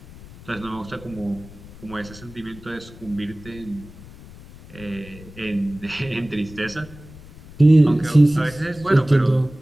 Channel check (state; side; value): noise; left; rumble, 19 dB below the sound